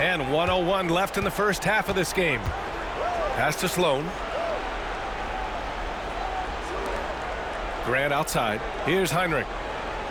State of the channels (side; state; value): both; identical; correlation 1.00